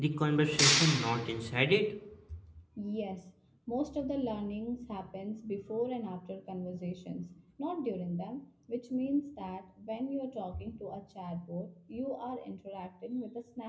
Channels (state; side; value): identical; both; correlation 1.00